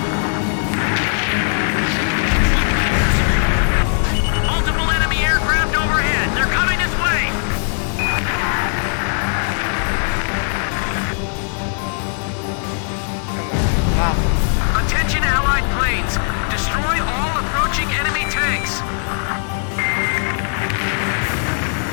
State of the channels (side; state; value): right; silent; digital silence